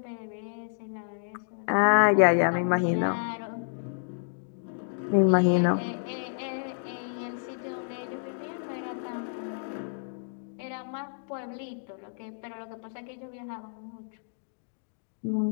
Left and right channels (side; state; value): right; silent; digital silence